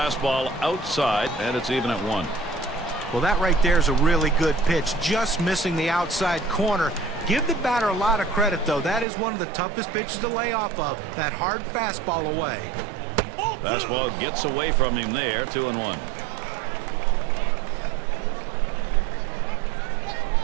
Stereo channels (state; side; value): drops out; left; at 9.1 s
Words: outside, and it's even at 1. Well, that right there is a really good pitch. Just missing the outside corner. Give the batter a lot of credit, though. That is one of the toughest pitches to lay off of. That hard fastball away. Fastball gets away from him there. 2-1.